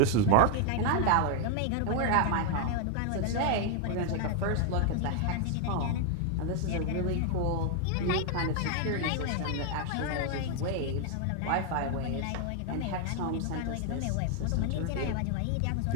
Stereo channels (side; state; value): both; different; correlation 0.00